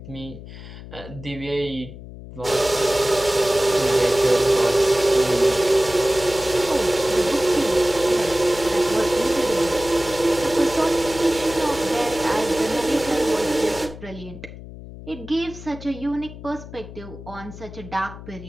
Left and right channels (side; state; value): left; noise; hum, 14 dB below the sound